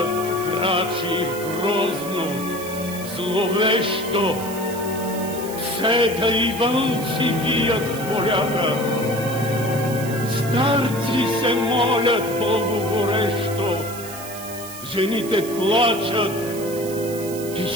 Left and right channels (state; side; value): noise; right; hiss, 13 dB below the sound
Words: крачи грозно, зловещо, псета и вълци вият в полята, старци се молят Богу горещо, жените плачат и